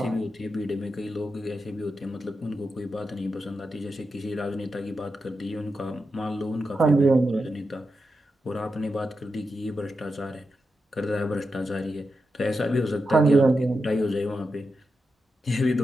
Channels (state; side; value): normal; both; correlation 0.88